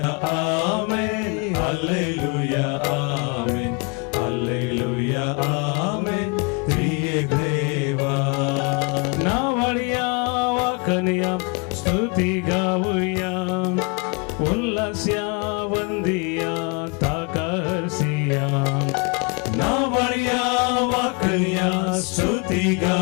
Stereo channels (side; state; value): right; quieter; 32.7 dB